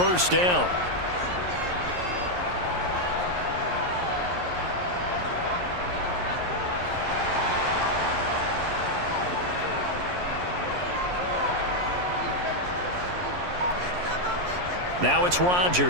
down. Now it's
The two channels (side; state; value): left; late; 11 ms